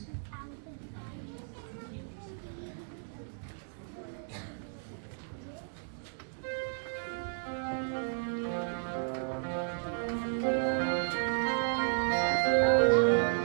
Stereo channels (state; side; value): silent; left; digital silence